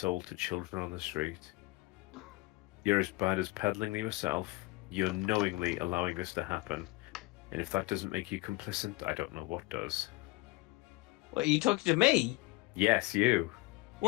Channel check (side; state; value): right; quieter; 21.1 dB